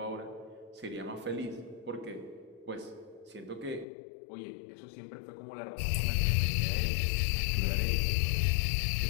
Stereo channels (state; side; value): drops out; right; at 3.9 s